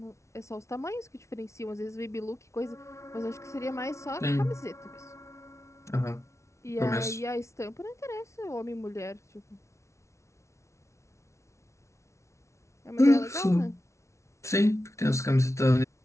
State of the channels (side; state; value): right; late; 0.14 ms